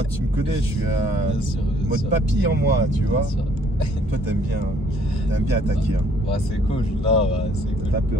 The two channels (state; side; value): normal; both; correlation 0.62